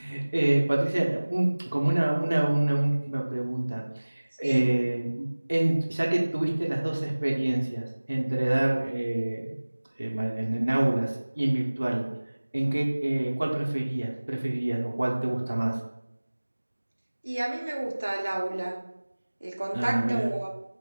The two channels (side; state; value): both; inverted; correlation -1.00